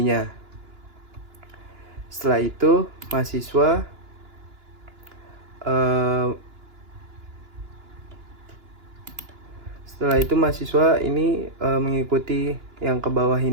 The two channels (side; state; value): left; late; 2.9 ms